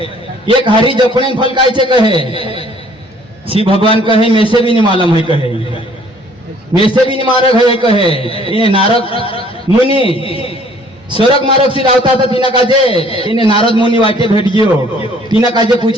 कहे शिव भगवान कहे में से भी नहीं मालूम है कहे में से भी नहीं मारक है कहे इन्हें नारद मुनि स्वर्ग मार्ग से आवता था तीना काजे इन्हें नारद मुनि वाटे भेट गयो तीना काजे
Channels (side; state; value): both; normal; correlation 0.58